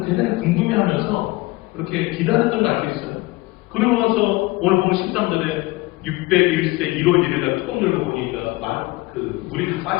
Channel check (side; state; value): right; quieter; 21.2 dB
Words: 대단히 궁금해하면서 그렇게 기다렸던 거 알 수 있어요. 그러고 나서 오늘 보면 13절에 601세 1월 1일날 뚜껑 열고 보니까 물이 다